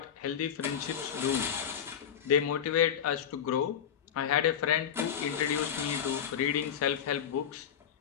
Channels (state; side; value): quieter; right; 8.7 dB